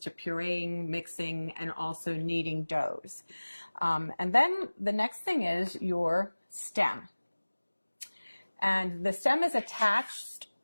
pureeing, mixing, and also kneading doughs. And then the next thing is your stem. And the stem is attached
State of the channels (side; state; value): both; inverted; correlation -1.00